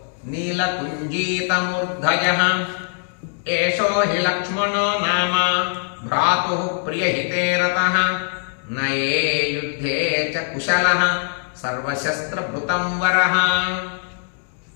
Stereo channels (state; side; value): silent; right; 65 dB below the other